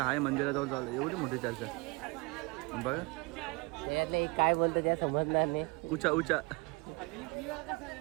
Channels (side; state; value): left; quieter; 26.6 dB